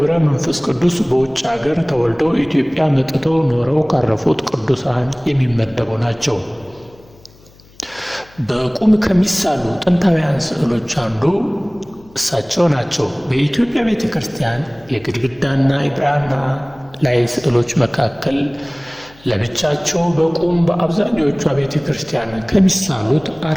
መንፈስ ቅዱስ በውጭ አገር ተወልደው ኢትዮጵያ መጥተው ኖረው ካረፉት ቅዱሳን የሚመደቡ ናቸው። በቁም ከሚሳሉ ጥንታውያን ስዕሎች አንዱ እሳቸው ናቸው። በኢትዮጵያ ቤተ ክርስቲያን የግድግዳና የብራና ላይ ስዕሎች መካከል ለብቻቸው በቁም በአብዛኞቹ ቤተ ክርስቲያን ከሚሳሉት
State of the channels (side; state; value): left; noise; hum, 27 dB below the sound